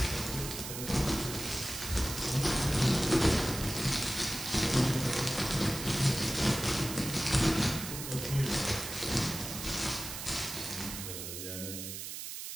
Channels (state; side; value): noise; right; hiss, 7 dB below the sound